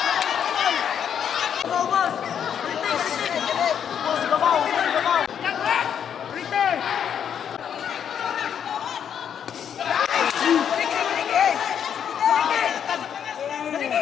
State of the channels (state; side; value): quieter; right; 8.5 dB